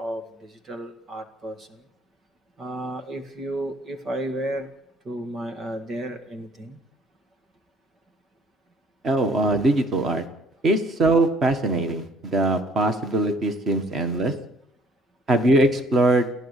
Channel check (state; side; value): normal; both; correlation 0.59